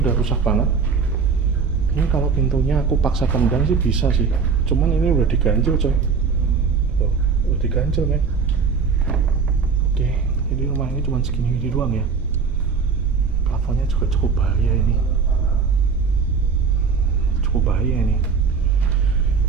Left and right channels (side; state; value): left; quieter; 5.4 dB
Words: udah rusak banget. Ini kalau pintunya aku paksa tendang sih bisa sih. Cuman ini udah diganjel coy. Tuh, udah diganjel men. Oke, jadi rumah ini cuma segini doang ya. Plafonnya juga cukup bahaya ini. Cukup bahaya ini.